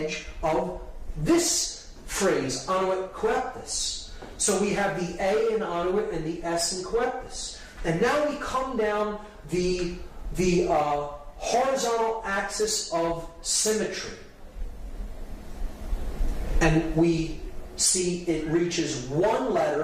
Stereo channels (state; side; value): identical; both; correlation 1.00